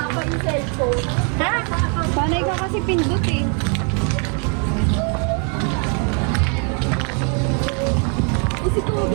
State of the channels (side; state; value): left; quieter; 38.7 dB